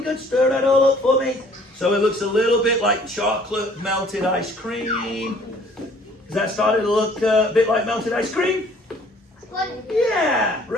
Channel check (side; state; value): both; normal; correlation 0.57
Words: good. Stir that all up for me. So it looks a little bit like chocolate melted ice cream. Is that starting to look a bit like melted ice cream? Yeah,